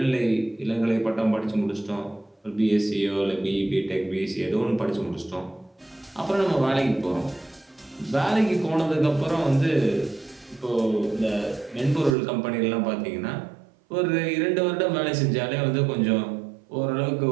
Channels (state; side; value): drops out; left; at 12.2 s